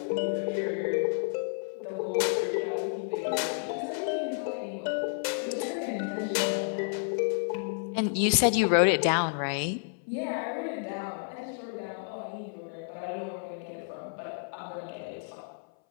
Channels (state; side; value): silent; right; 57 dB below the other